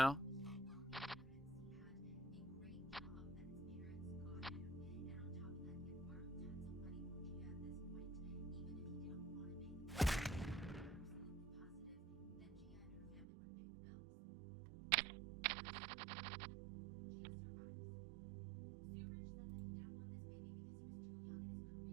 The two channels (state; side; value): drops out; left; at 13.2 s